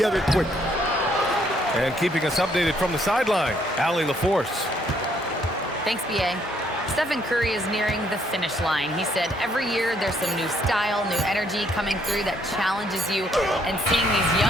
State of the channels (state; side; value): normal; both; correlation 0.69